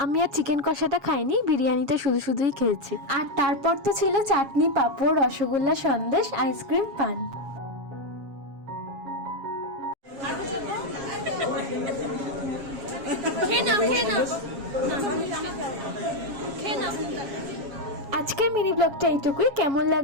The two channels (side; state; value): left; late; 7.3 ms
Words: আমি আর চিকেন কষাটা খাইনি, বিরিয়ানিটা শুধুই খেয়েছি। আর তারপর তো ছিল চাটনি, পাঁপড়, রসগোল্লা, সন্দেশ, আইসক্রিম, পান। আজকের মিনি ব্লগটা এইটুকুই। কেমন